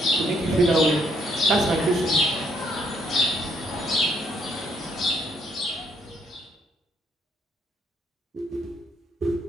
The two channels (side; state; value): both; normal; correlation 0.69